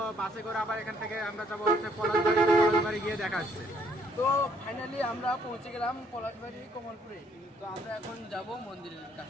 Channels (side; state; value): both; normal; correlation 0.66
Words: বাসে করে আবার এখান থেকে আমরা যাবো হচ্ছে পলাশবাড়ি। পলাশবাড়ি গিয়ে দেখা আসছে। তো ফাইনালি আমরা পৌঁছে গেলাম পলাশবাড়ি কমলপুরে। তো আমরা এখন যাব মন্দিরের